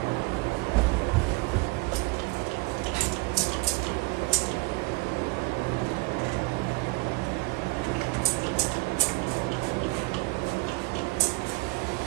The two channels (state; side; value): quieter; left; 25.2 dB